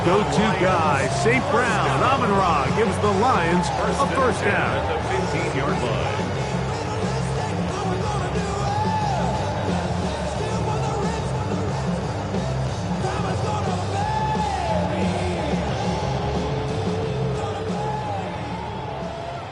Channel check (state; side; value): identical; both; correlation 1.00